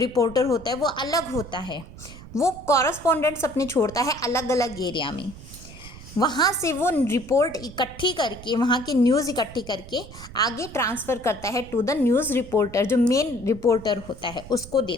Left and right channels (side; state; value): right; noise; rumble, 16 dB below the sound